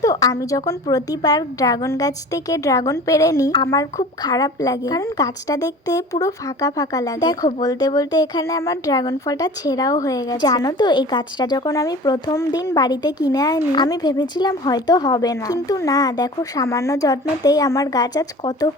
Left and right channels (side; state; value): both; normal; correlation 0.40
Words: তো আমি যখন প্রতিবার ড্রাগন গাছ থেকে ড্রাগন পেড়ে নিই, আমার খুব খারাপ লাগে, কারণ গাছটা দেখতে পুরো ফাঁকা ফাঁকা লাগে। দেখো বলতে বলতে এখানে আমার ড্রাগন ফলটা ছেঁড়াও হয়ে গেছে। জানো তো এই গাছটা যখন আমি প্রথম দিন বাড়িতে কিনে আনি, আমি ভেবেছিলাম হয়তো হবে না, কিন্তু না, দেখো সামান্য যত্নতেই আমার গাছ আজ কত